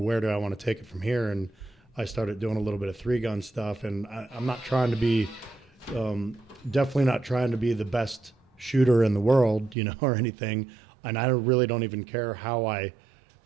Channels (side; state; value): left; drops out; at 9.8 s